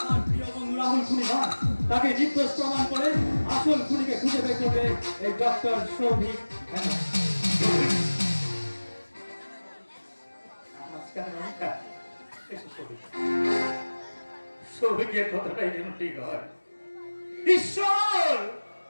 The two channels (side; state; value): both; inverted; correlation -1.00